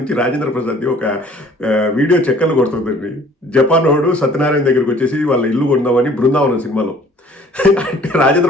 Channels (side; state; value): both; normal; correlation 0.54